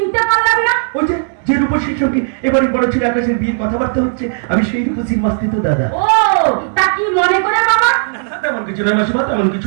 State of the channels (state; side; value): silent; left; digital silence